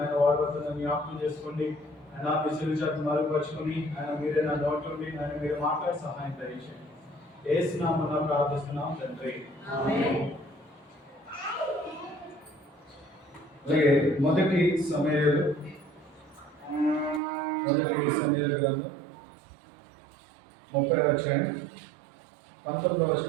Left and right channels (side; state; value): left; drops out; at 17.2 s